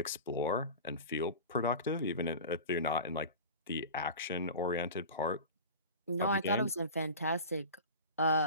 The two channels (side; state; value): both; inverted; correlation -0.33